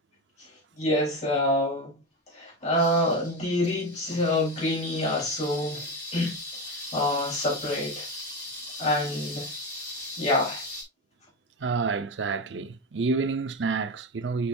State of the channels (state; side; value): normal; both; correlation 0.18